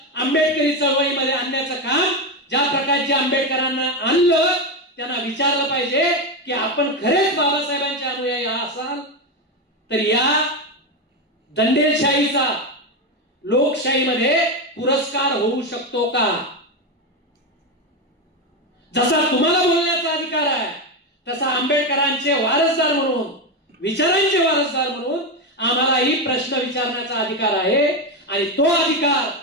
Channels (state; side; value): normal; both; correlation 0.12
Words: आंबेडकरी चळवळीमध्ये आणण्याचं काम ज्या प्रकारचे आंबेडकरांना आणलं त्यांना विचारलं पाहिजे की आपण खरेच बाबासाहेबांचे अनुयायी असाल तर या दंडेलशाहीचा लोकशाहीमध्ये पुरस्कार होऊ शकतो का? जसा तुम्हाला बोलण्याचा अधिकार आहे तसा आंबेडकरांचे वारसदार म्हणून, विचारांचे वारसदार म्हणून आम्हालाही प्रश्न विचारण्याचा अधिकार आहे. आणि तो अधिकार